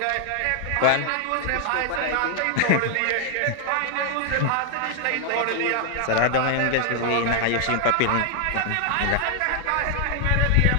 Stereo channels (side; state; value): both; different; correlation 0.00